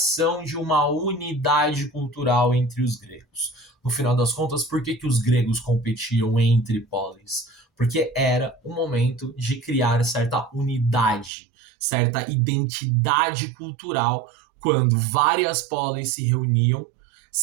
de uma unidade cultural entre os gregos. No final das contas, por que os gregos competiam entre polis? Porque era o momento de criar certa unidade, certa identidade cultural, quando várias polis se reuniam,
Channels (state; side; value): drops out; left; at 11.3 s